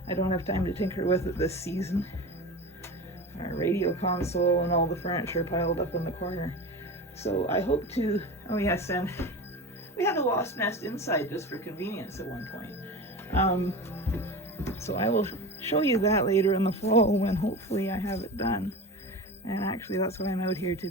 I don't have time to tinker with it this season. Our radio console and all the furniture piled up in the corner. So I hope to, oh yes, and we had a wasp nest inside just for convenience at one point. So I will show you that later in the fall when hopefully I have it done. And actually that's what I'm out here to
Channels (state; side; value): normal; both; correlation 0.29